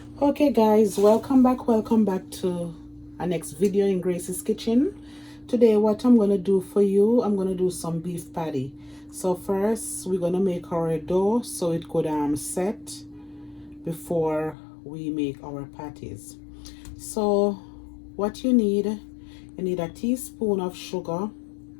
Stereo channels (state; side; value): drops out; right; at 14.6 s